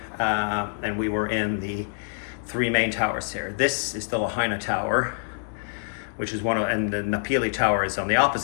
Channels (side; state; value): right; silent; digital silence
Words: and we were in the 3 main towers here. This is the Lahaina Tower, which is and the Napili Tower is on the